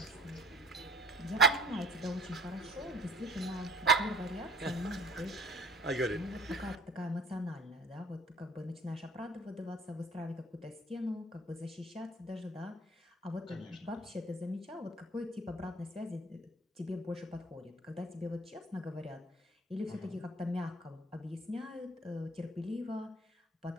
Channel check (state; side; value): normal; both; correlation 0.48